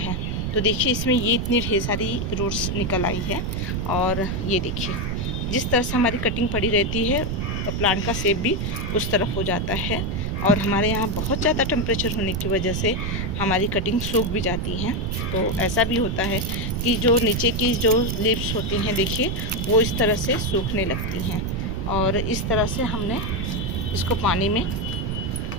तो देखिए इसमें ये इतनी ढेर सारी रूट्स निकल आई है और ये देखिए जिस तरह से हमारी कटिंग पड़ी रहती है प्लांट का शेप भी उस तरफ हो जाता है। और हमारे यहाँ बहुत ज़्यादा टेम्परेचर होने की वजह से हमारी कटिंग सूख भी जाती हैं। तो ऐसा भी होता है कि जो नीचे की जो लीव्स होती हैं देखिए वो इस तरह से सूखने लगती हैं। और इस तरह से हमने इसको पानी में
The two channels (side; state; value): right; noise; rumble, 2 dB below the sound